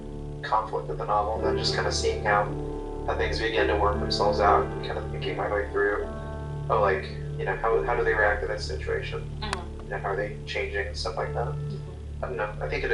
conflict of the novel, and then just kind of seeing how things begin to work themselves out, and kind of thinking my way through, oh, like, you know, how do they react to this situation? You know, how are they changing and stuff like that? I don't know. I think it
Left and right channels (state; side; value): identical; both; correlation 1.00